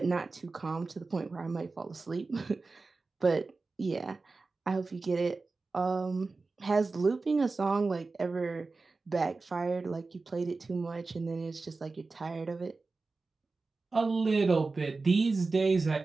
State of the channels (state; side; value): quieter; left; 3.8 dB